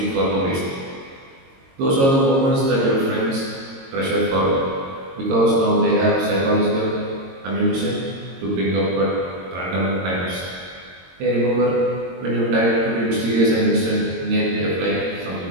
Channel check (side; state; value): left; late; 22 ms